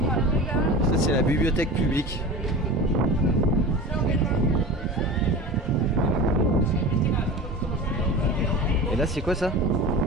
Ça c'est la bibliothèque publique. Et là c'est quoi ça?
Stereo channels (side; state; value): both; normal; correlation 0.32